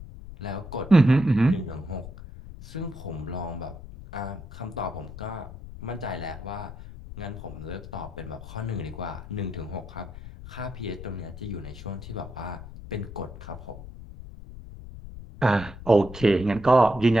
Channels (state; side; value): noise; left; rumble, 13 dB below the sound